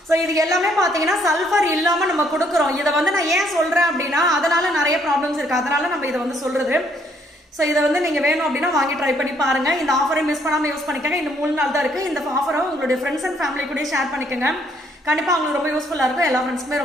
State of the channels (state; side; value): normal; both; correlation 0.68